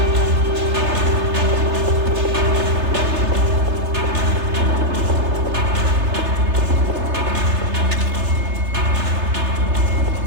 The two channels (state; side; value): late; left; 3.3 ms